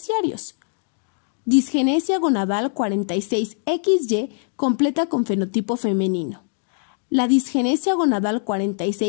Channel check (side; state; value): right; silent; digital silence